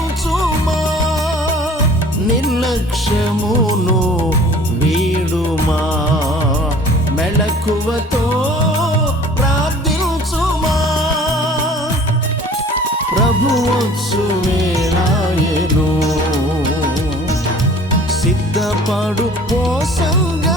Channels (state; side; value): normal; both; correlation 0.49